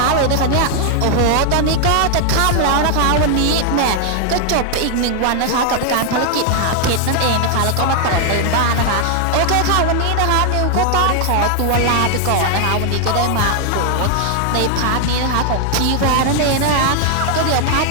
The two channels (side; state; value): both; different; correlation 0.00